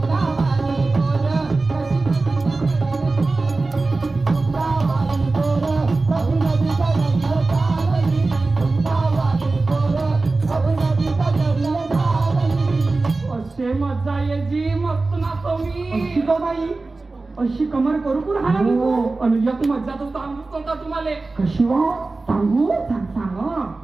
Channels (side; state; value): left; quieter; 3.5 dB